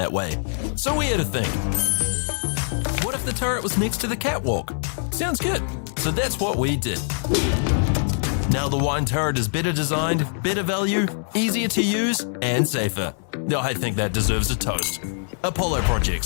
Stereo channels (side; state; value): right; silent; 63 dB below the other